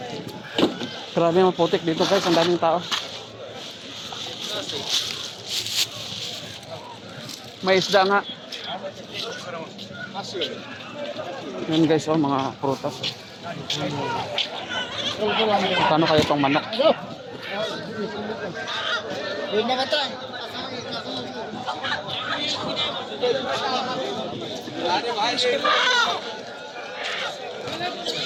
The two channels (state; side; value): identical; both; correlation 1.00